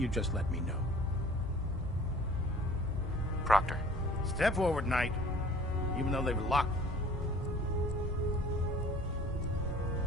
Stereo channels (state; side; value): normal; both; correlation 0.50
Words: just let me know. Proctor. Step forward, Knight. Even though they've locked...